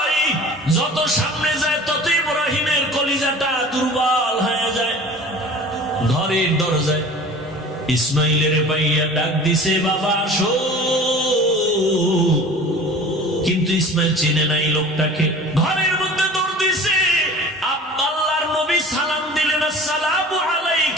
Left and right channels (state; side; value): normal; both; correlation 0.42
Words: যত সামনে যায় তত ইব্রাহিমের কলিজাটা দুর্বল হয়ে যায়। ঘরের দরজায় ইসমাইলের পাইয়া ডাক দিছে, বাবা আসো। কিন্তু ইসমাইল চিনে নাই লোকটাকে। ঘরের মধ্যে দৌড় দিছে। আল্লাহর নবী সালাম দিলেন, আসসালামু